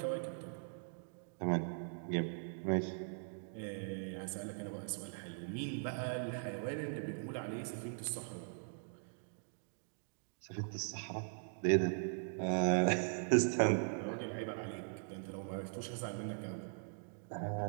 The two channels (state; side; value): silent; left; digital silence